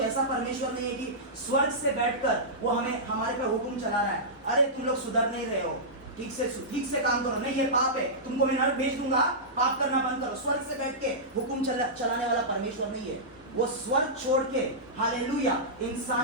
ऐसा परमेश्वर नहीं है कि स्वर्ग से बैठकर वो हमारे पे हुक्म चला रहा है, अरे तुम लोग सुधर नहीं रहे हो, ठीक से काम करो, नहीं ये पाप है, तुमको मैं नरक भेज दूंगा, पाप करना बंद करो। स्वर्ग से बैठ के हुक्म चलाने वाला परमेश्वर नहीं है। वो स्वर्ग छोड़ के, हालेलुया,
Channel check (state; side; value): normal; both; correlation -0.15